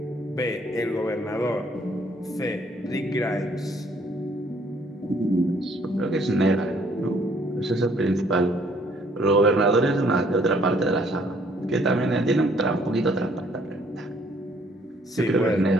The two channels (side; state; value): both; normal; correlation 0.63